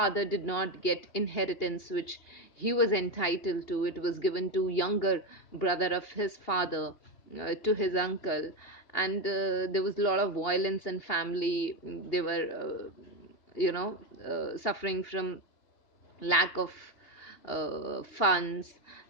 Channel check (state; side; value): late; right; 2.8 ms